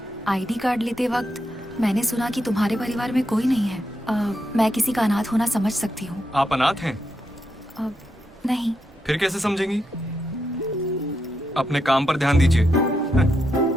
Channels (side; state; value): both; normal; correlation 0.83